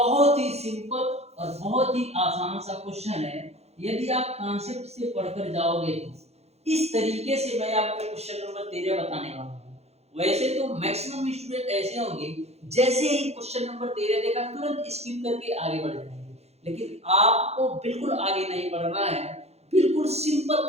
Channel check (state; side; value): late; left; 0.31 ms